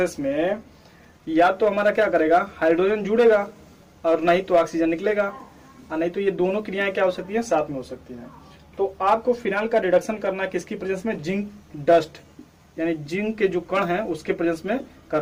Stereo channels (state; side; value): identical; both; correlation 1.00